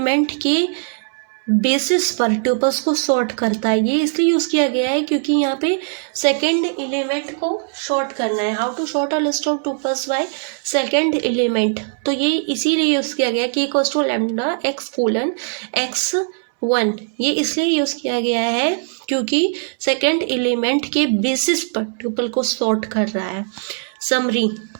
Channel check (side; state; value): left; silent; 66 dB below the other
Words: के बेसिस पर ट्यूपल्स को सॉर्ट करता है। ये इसलिए यूज किया गया है क्योंकि यहाँ पे सेकंड एलिमेंट को शॉर्ट करना है। How to sort a list of tuples by second element, तो ये इसीलिए यूज किया गया कि इक्वल्स टू लैम्डा x:x1। ये इसलिए यूज किया गया है क्योंकि सेकंड एलिमेंट के बेसिस पर ट्यूपल को सॉर्ट कर रहा है। समरी,